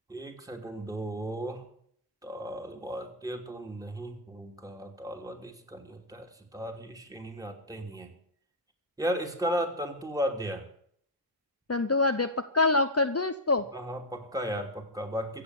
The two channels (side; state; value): both; normal; correlation -0.04